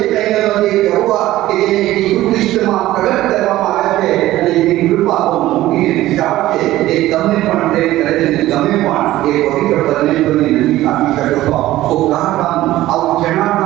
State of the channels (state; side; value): quieter; left; 15.6 dB